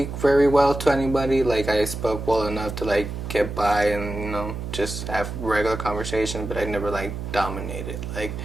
very well to anybody. Like I spoke well enough to like get by and just have regular conversation, but I never like dominated like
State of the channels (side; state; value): right; noise; hum, 7 dB below the sound